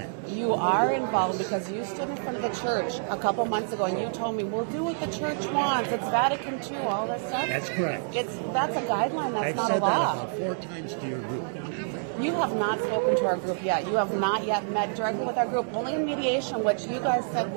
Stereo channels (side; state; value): left; silent; digital silence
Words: You are involved because you stood in front of the church a couple months ago and you told me, we'll do what the church wants. It's Vatican II, all this stuff. That's correct. That's a guideline. That's not a law. I've said that about 4 times to your group. You have not spoken to our group yet. You have not yet met directly with our group. Only in mediation, which you guys said